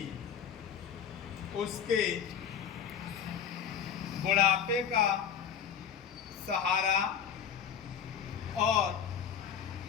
उसके बुढ़ापे का सहारा और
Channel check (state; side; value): quieter; right; 8.1 dB